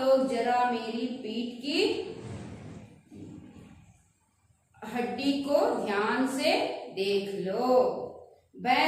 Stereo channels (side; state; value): both; identical; correlation 1.00